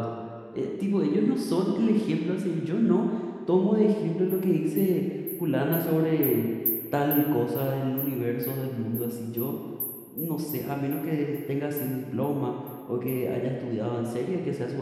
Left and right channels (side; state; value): both; identical; correlation 1.00